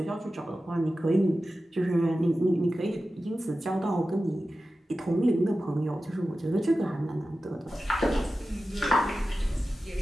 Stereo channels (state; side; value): normal; both; correlation 0.94